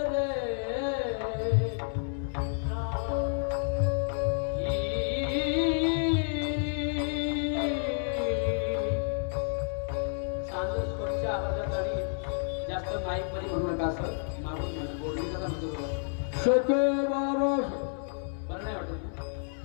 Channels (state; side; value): silent; right; 58 dB below the other